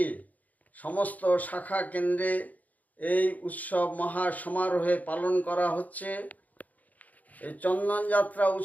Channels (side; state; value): right; late; 0.077 ms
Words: সমস্ত শাখা কেন্দ্রে এই উৎসব মহা সমারোহে পালন করা হচ্ছে। এই চন্দনযাত্রা